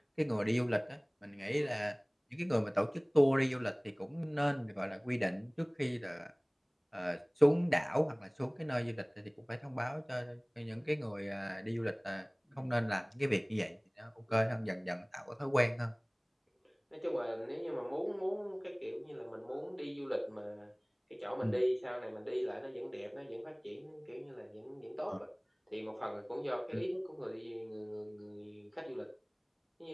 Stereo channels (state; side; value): identical; both; correlation 1.00